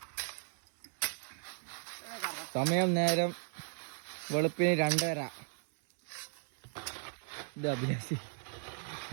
സമയം നേരം വെളുപ്പിന് 2:30. ഇത് അഭിലാഷ്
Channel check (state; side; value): silent; left; 54 dB below the other